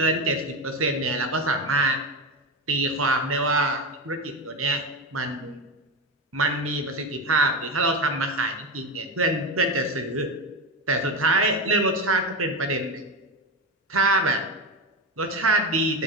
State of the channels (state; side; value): normal; both; correlation 0.17